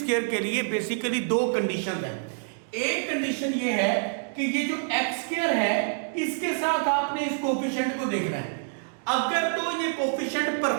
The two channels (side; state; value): left; silent; 60 dB below the other